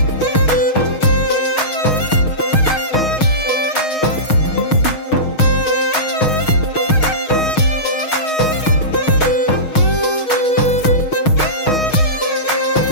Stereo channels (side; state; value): right; late; 6.4 ms